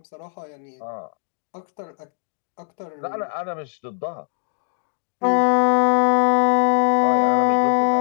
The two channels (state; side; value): silent; right; digital silence